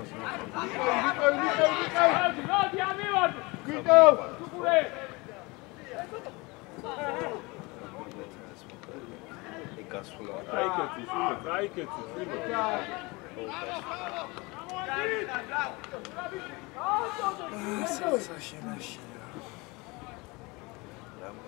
მოდი ამივარ. ვიტო სუპურე. გასვლა გაიკეთე.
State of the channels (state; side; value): quieter; right; 25.4 dB